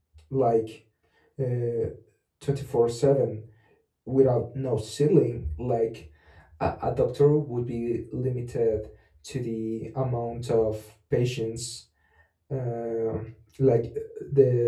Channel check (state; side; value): identical; both; correlation 1.00